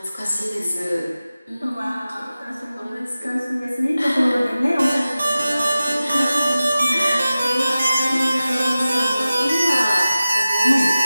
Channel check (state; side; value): inverted; both; correlation -0.96